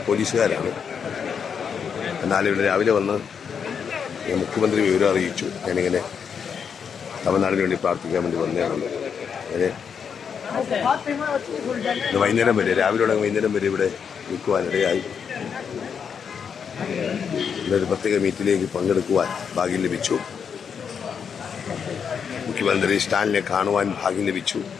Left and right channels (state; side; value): quieter; right; 6.9 dB